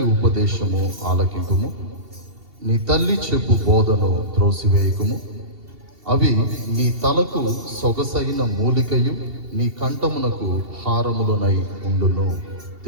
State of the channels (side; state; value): left; late; 2.7 ms